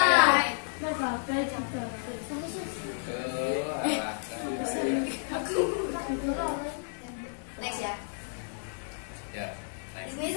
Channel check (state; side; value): silent; right; digital silence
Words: Next ya. Ya, Di sini